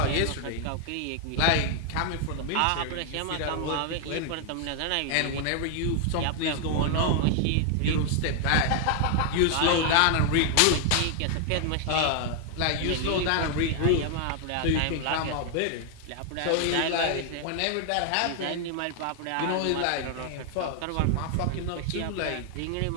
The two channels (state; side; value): different; both; correlation 0.00